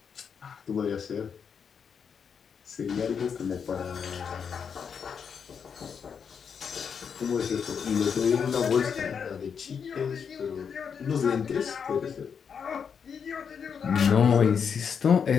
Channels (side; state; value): right; quieter; 6.8 dB